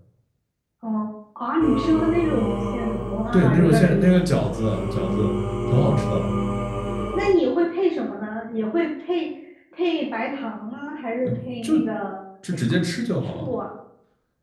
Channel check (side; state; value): both; identical; correlation 1.00